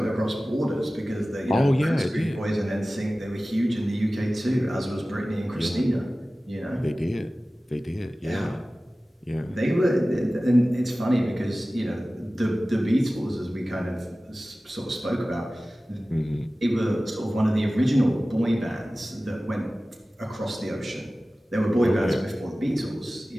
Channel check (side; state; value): both; normal; correlation 0.97